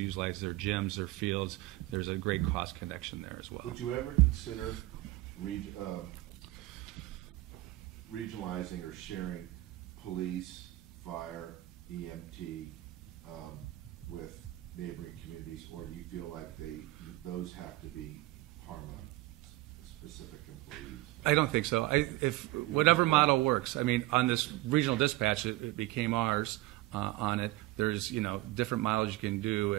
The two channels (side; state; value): left; quieter; 18.1 dB